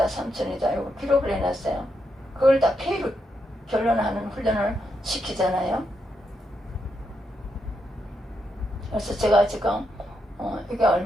3,000원이다 이거 기록을 해놨어요. 그걸 다 페이로 결론하는 훈련을 시키잖아요. 그래서 제가 지금 이게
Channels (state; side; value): normal; both; correlation 0.82